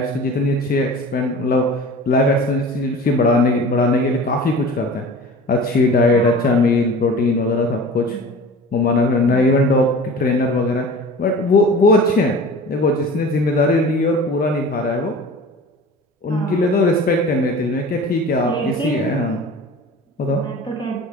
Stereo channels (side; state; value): both; normal; correlation 0.39